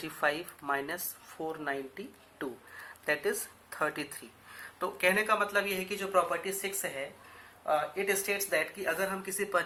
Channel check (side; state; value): both; identical; correlation 1.00